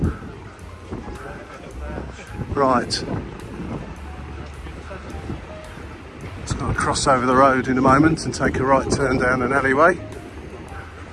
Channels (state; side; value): identical; both; correlation 1.00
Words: Right. Just got to cross over the road in a moment and take a right turn down an alleyway